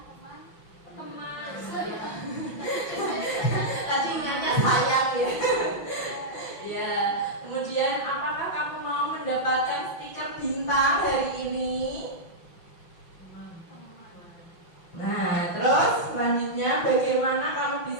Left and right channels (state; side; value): late; right; 5.8 ms